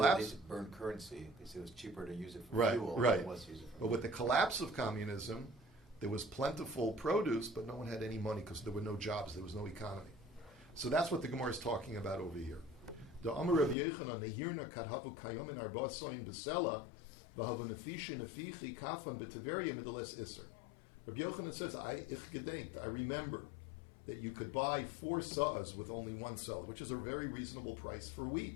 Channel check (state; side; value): drops out; right; at 13.8 s